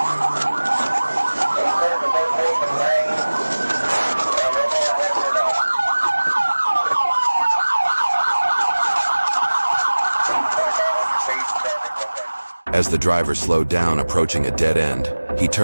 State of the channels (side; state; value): both; inverted; correlation -1.00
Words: As the driver slowed down approaching a dead end, he